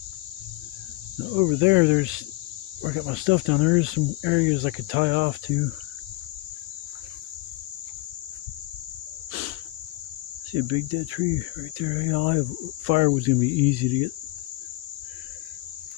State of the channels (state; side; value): quieter; right; 20.0 dB